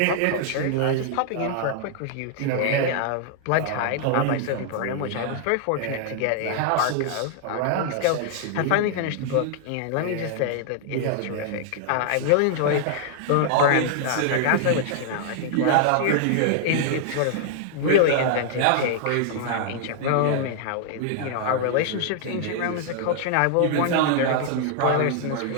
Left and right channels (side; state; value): both; different; correlation -0.01